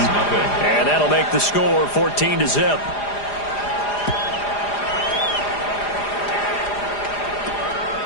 And that'll make the score 14-0.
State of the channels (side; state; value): right; late; 4.9 ms